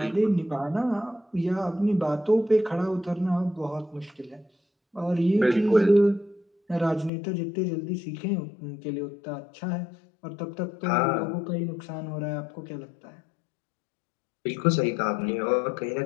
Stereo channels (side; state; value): right; drops out; at 7.1 s